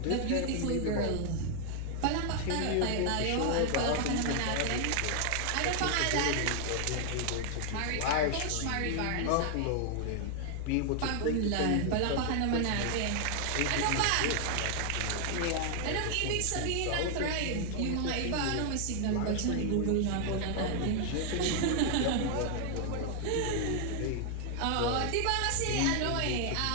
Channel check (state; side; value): different; both; correlation 0.00